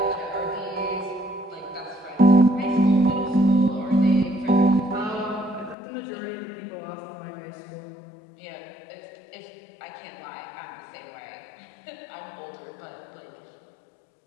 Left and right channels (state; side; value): drops out; right; at 5.8 s